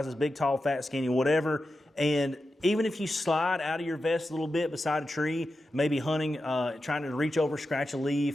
big, tall, fat, skinny, whatever. And even if you slide out of your vest a little bit beside a tree, maybe hunting, trying to reach over, scratch a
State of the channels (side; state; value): both; normal; correlation 0.91